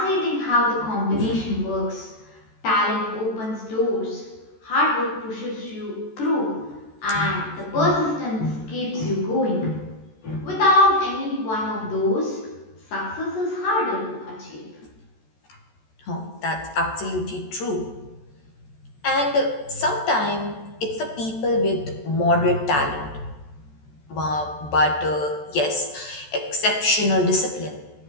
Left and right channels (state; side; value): late; right; 14 ms